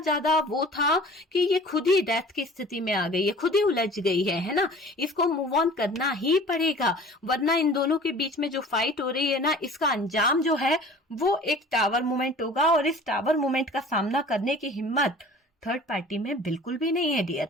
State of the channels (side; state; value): both; normal; correlation 0.45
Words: वो था कि ये खुद ही डेथ की स्थिति में आ गई है, खुद ही उलझ गई है ना। इसको मूव ऑन करना ही पड़ेगा, वरना इन दोनों के बीच में जो फाइट हो रही है ना, इसका अंजाम जो है वो एक टावर मूवमेंट होगा। और इस टावर मूवमेंट का सामना करने की हिम्मत थर्ड पार्टी में बिल्कुल भी नहीं है डियर,